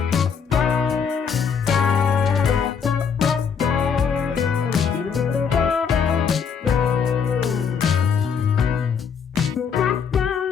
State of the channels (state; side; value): quieter; right; 6.6 dB